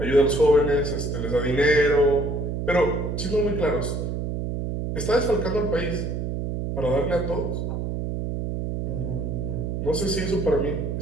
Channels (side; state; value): right; noise; hum, 3 dB below the sound